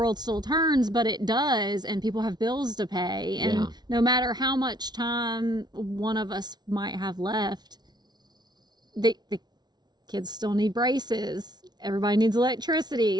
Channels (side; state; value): left; late; 0.20 ms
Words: still turns, but it does, and people have bills to pay, and no matter how much time one of us might have left, the kids still need braces. Everybody needs